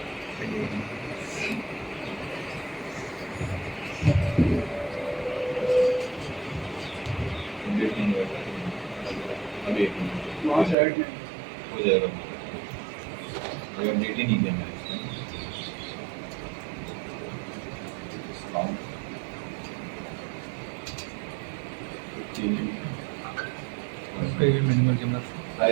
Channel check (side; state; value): left; drops out; at 10.8 s